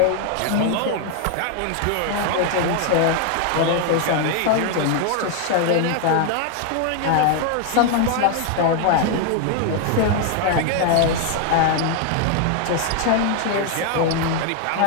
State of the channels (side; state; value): both; different; correlation 0.00